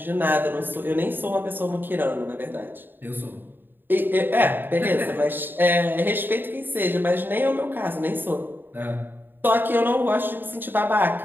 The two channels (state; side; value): late; left; 0.095 ms